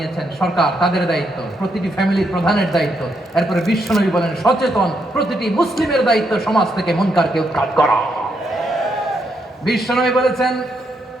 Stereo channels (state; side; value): normal; both; correlation 0.78